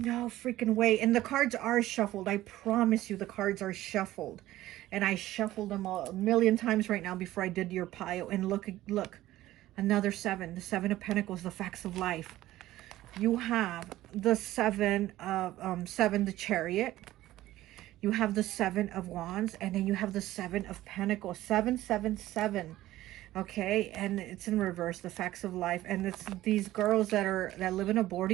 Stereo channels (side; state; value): left; quieter; 15.4 dB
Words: freaking way. And the cards are shuffled. I promise you the cards are shuffled. And I shuffled them a million times right now before I did your pile. And look, another seven. The Seven of Pentacles, the facts of life. You have the seven, the Chariot. You have the Seven of Wands, and then you have the Seven of Pentacles. 777. Okay, and it's in reverse, the facts of life. And it's these girls that live in a